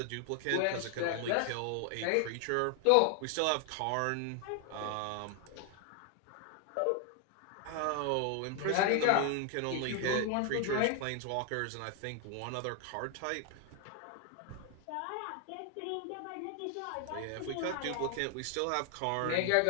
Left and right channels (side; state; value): both; different; correlation 0.00